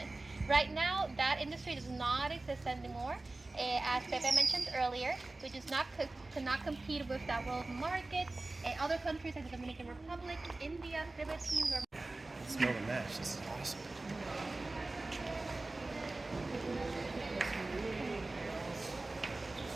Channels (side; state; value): left; quieter; 3.0 dB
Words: Right now, that industry does not exist anymore. As Pepe mentioned earlier, we just cannot compete with that world market. Other countries like the Dominican Republic, India, Philippines, or Smell the mash. This is awesome.